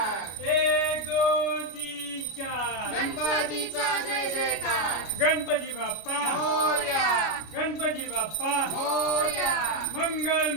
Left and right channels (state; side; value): late; right; 33 ms